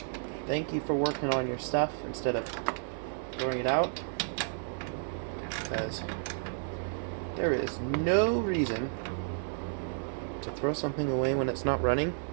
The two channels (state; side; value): silent; left; 55 dB below the other